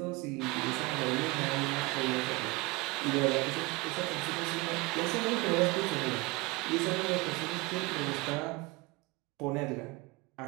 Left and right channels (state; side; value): quieter; left; 23.1 dB